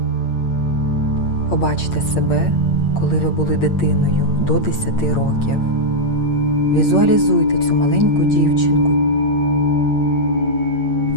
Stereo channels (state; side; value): late; right; 8.7 ms